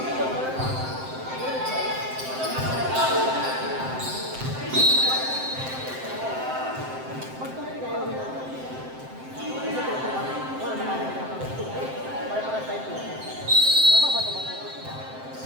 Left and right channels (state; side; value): late; left; 7.7 ms